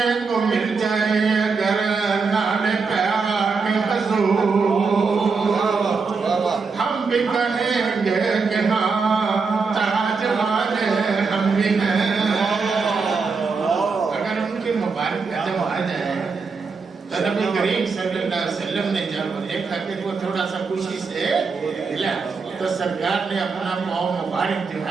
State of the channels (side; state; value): left; quieter; 4.8 dB